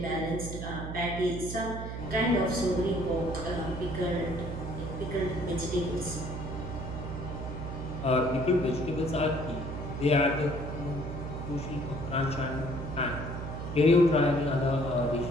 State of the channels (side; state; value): right; noise; hum, 6 dB below the sound